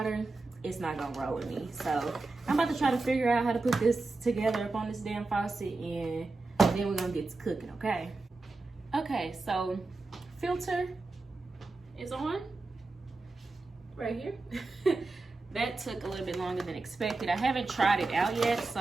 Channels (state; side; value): quieter; left; 3.5 dB